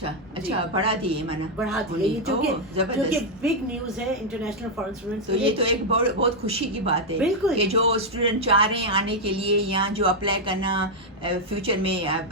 بڑھا دیے, بڑھا دیے, جو کہ بگ نیوز ہے انٹرنیشنل فارن اسٹوڈنٹس. تو یہ تو ایک بہت خوشی کی بات ہے کہ جو اسٹوڈنٹ چاہ رہے ہیں آنے کے لیے, یا جو اپلائی کرنا فیوچر میں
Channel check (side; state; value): both; normal; correlation -0.01